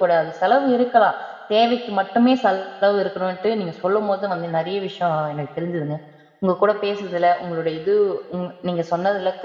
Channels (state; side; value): identical; both; correlation 1.00